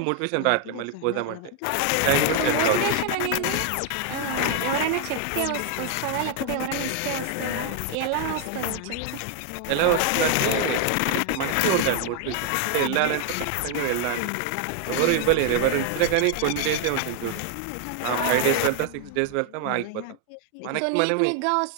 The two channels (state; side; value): different; both; correlation 0.00